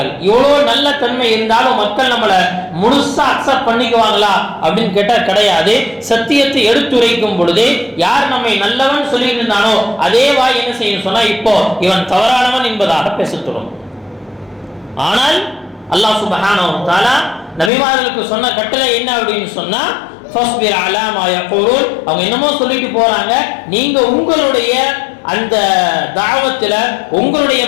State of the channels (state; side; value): drops out; right; at 17.7 s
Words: இவ்வளவு நல்ல தன்மை இருந்தாலும் மக்கள் நம்மளை முழுசா அக்செப்ட் பண்ணிக்குவாங்களா அப்படின்னு கேட்டா கிடையாது. சத்தியத்தை எடுத்துரைக்கும் பொழுது யார் நம்மை நல்லவன் சொல்லிட்டு இருந்தானோ அதே வாய் என்ன செய்யும் சொன்னா, இப்போ இவன் தவறானவன் என்பதாக பேசத்தோடும். ஆனால் அல்லாஹ் சுப்ஹானஹு வ தஆலா நபிமார்களுக்கு சொன்ன கட்டளை என்ன அப்படின்னு சொன்னா, ஃபஸ்பிர் அலா மா யகூலுன், அவங்க என்னமோ சொல்லிட்டு போறாங்க, நீங்க உங்களுடைய அந்த தாவத்துல உங்களுடைய